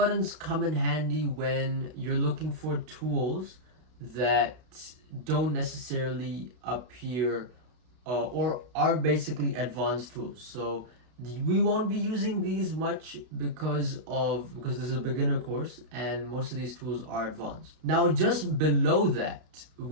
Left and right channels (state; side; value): late; left; 32 ms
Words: come in handy when you're looking for tools that don't necessarily appear or are basically advanced tools. So we won't be using these much because this is a beginner course and most of these tools are advanced. Now just below that